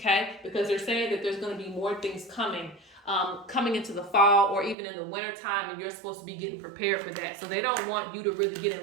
Because they're saying that there's going to be more things coming into the fall or even in the winter time, and you're supposed to be getting prepared for that. So they don't want you to really get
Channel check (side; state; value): left; drops out; at 4.8 s